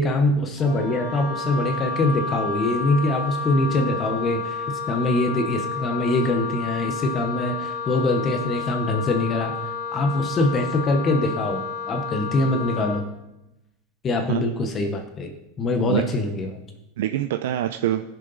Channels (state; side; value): normal; both; correlation 0.42